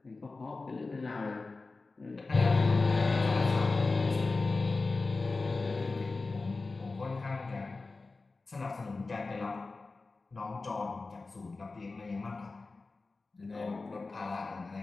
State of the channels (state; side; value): quieter; right; 3.7 dB